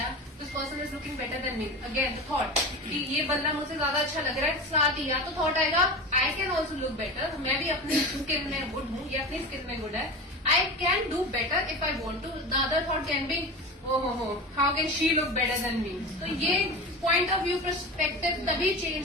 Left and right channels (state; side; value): normal; both; correlation 0.28